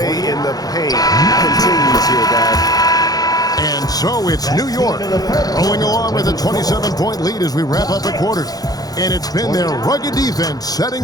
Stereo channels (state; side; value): late; right; 0.18 ms